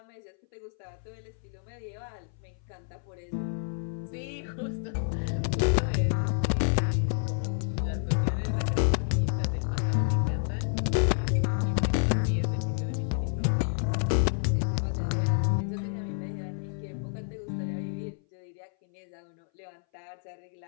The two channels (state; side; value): silent; right; 58 dB below the other